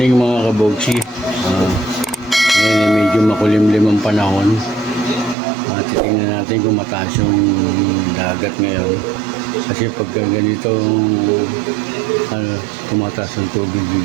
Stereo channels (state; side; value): drops out; left; at 5.4 s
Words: mga kabogsi. Ngayon medyo makulimlim ang panahon. Titingnan natin kung mataas yung dagat ngayon. Kasi pagka ganito tumataas ang tubig